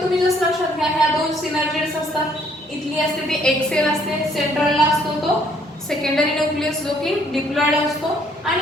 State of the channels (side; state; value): both; normal; correlation 0.65